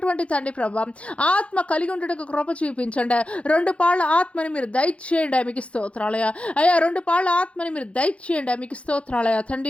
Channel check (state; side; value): late; right; 0.062 ms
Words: తండ్రి ప్రభా ఆత్మ కలిగి ఉండటకు కృప చూపించండి. 2 పాళ్ళ ఆత్మని మీరు దయచేయండి మీకు స్తోత్రాలయ అయ్యా. 2 పాళ్ళ ఆత్మని మీరు దయచేయండి మీకు స్తోత్రాలయ